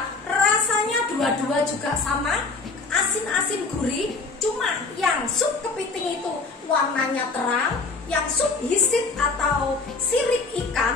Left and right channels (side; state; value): right; quieter; 3.9 dB